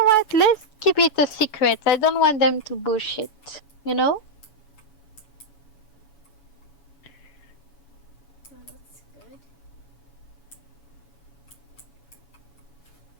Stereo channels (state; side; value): late; right; 7.0 ms